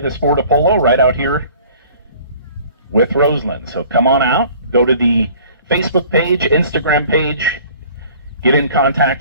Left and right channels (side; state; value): both; inverted; correlation -0.50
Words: sport of polo right out here with Roseland. So come on out, go to the Facebook page, Instagram page, get in